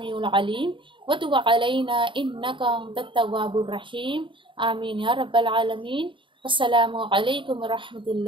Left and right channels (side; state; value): left; late; 0.24 ms